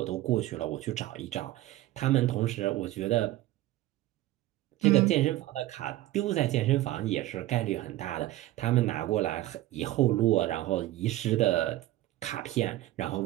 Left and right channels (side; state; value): left; quieter; 15.7 dB